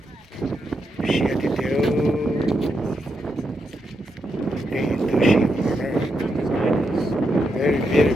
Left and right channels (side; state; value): both; normal; correlation 0.83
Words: Xía đi tiêu. Đây tôi xí nó nữa. Very